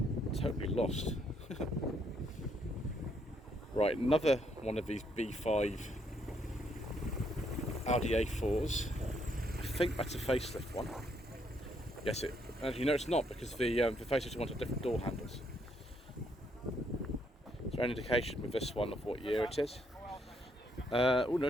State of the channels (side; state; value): both; normal; correlation 0.72